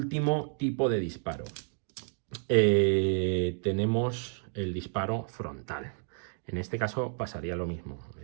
tipo de disparo. Tenemos el disparo frontal. En este caso pasaría lo mismo.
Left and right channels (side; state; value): left; silent; 57 dB below the other